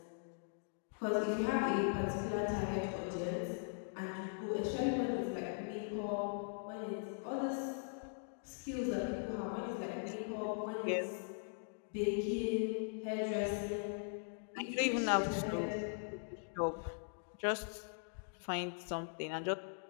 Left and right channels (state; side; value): silent; right; digital silence